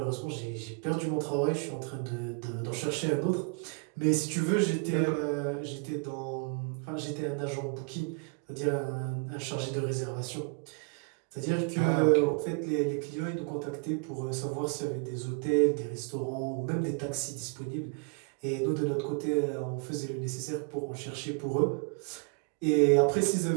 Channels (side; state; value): left; quieter; 36.0 dB